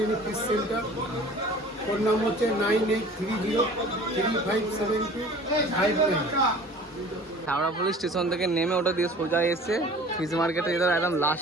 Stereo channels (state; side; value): normal; both; correlation 0.45